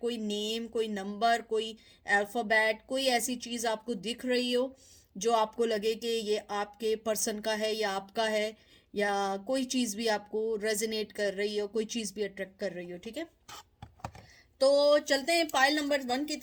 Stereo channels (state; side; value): identical; both; correlation 1.00